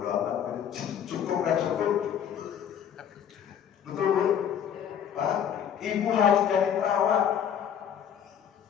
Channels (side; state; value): right; quieter; 8.8 dB